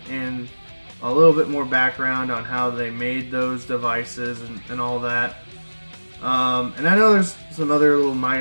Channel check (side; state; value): both; inverted; correlation -1.00